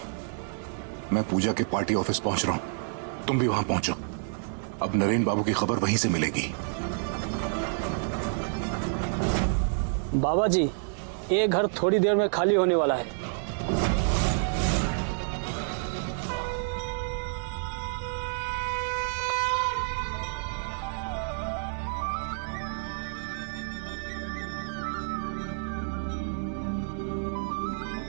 मैं पूजा के पार्टी ऑफिस पहुंच रहा हूं, तुम भी वहां पहुंचो। अब नरेन बाबू की खबर वहीं से मिलेगी। बाबा जी, ये घर थोड़ी देर में खाली होने वाला है।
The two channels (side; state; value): left; silent; 59 dB below the other